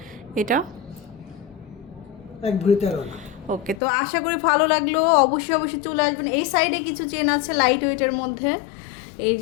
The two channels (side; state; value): right; drops out; at 3.8 s